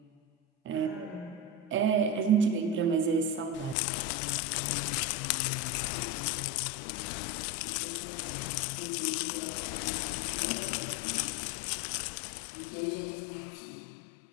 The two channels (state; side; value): drops out; right; at 3.8 s